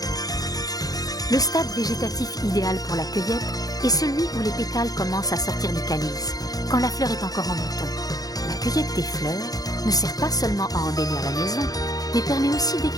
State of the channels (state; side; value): late; right; 0.18 ms